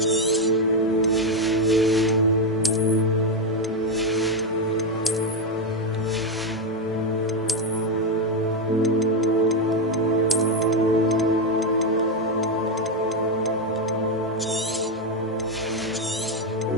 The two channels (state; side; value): normal; both; correlation 0.07